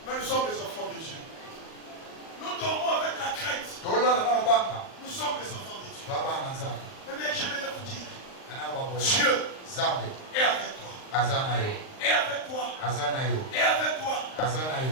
Mais nous sommes des enfants de Dieu. Nous dormons avec la crainte. Nous sommes des enfants de Dieu. Mais je vais vous dire, Dieu est avec toi. Et avec toi. Et avec toi.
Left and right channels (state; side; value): late; right; 39 ms